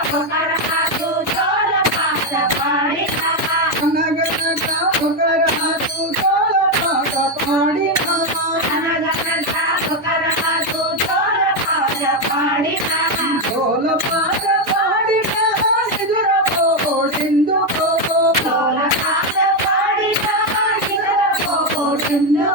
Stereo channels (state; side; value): normal; both; correlation 0.07